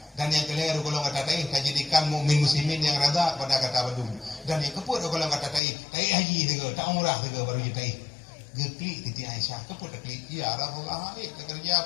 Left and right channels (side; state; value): right; drops out; at 5.6 s